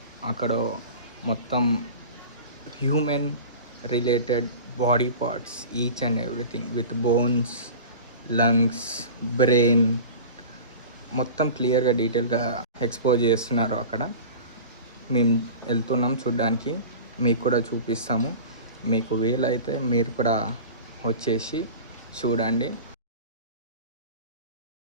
అక్కడ మొత్తం human related body parts, each and everything with bones, lungs, brain మొత్తం క్లియర్గా డీటెయిల్గా ఎక్స్పోజ్ చేస్తున్నారు. అక్కడ మేము వెళ్తున్నాం చూడ్డానికి, మీకు కూడా చూపిస్తాము. మీకు వీలైతే మీరు కూడా వచ్చేసి చూడండి.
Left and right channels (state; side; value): inverted; both; correlation -0.35